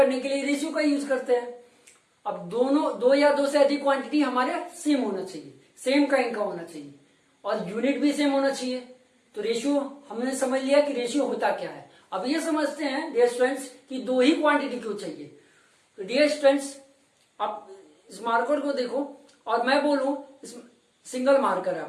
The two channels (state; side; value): identical; both; correlation 1.00